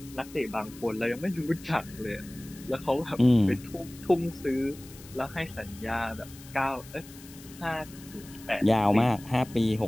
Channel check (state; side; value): noise; left; hiss, 19 dB below the sound